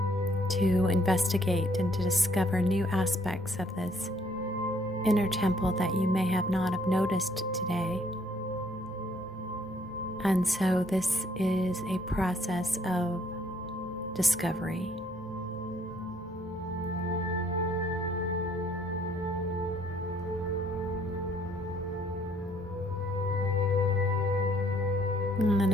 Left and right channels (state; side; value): normal; both; correlation 0.64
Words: to investigate and to discover new aspects of this inner temple that you may have not have noticed today. And so this is a process of discovery. And then